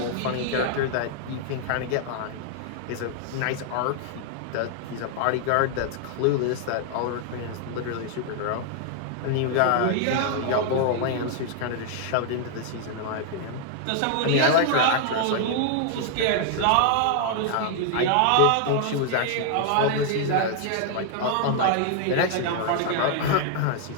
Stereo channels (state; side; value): different; both; correlation 0.00